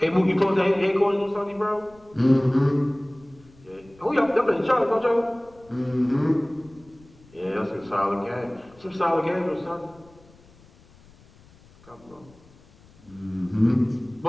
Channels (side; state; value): left; noise; rumble, 27 dB below the sound